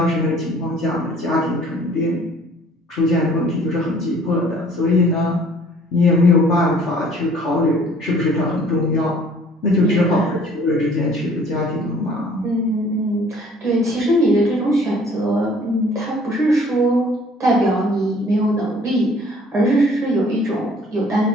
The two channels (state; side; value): normal; both; correlation 0.55